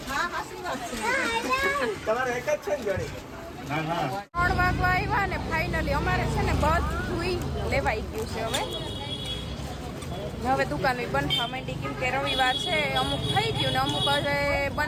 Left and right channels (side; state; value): both; identical; correlation 1.00